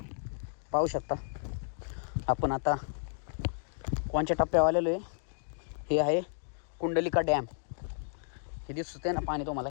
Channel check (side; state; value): right; silent; digital silence